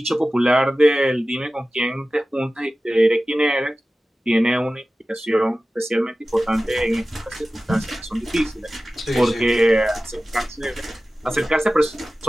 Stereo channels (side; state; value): both; normal; correlation 0.96